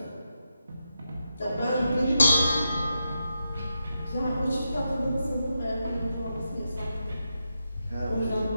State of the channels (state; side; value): inverted; both; correlation -0.86